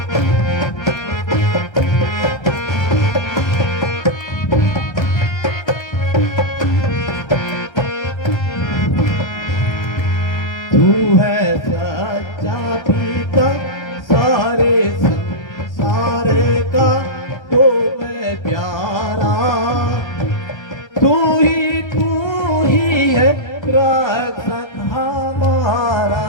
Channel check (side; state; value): right; late; 1.3 ms